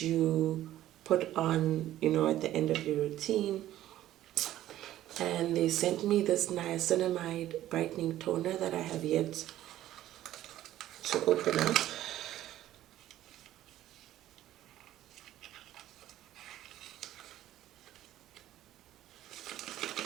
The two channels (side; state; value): left; quieter; 13.5 dB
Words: you put on, at the end of your routine. And they sent me this niacinamide brightening toner that I have yet to open up.